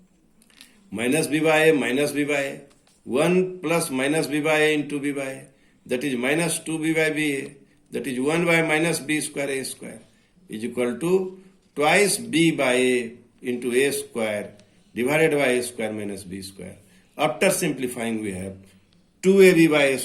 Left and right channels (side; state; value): both; identical; correlation 1.00